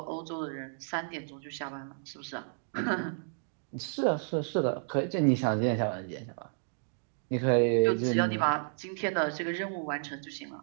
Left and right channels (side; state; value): left; silent; digital silence